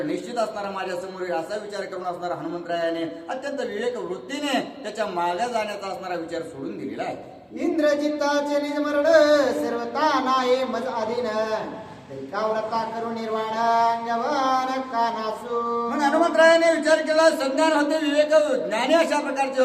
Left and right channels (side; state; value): both; identical; correlation 1.00